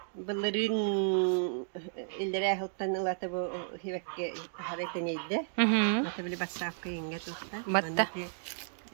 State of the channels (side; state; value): left; silent; digital silence